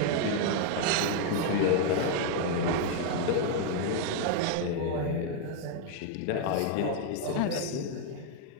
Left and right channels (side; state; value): both; different; correlation 0.00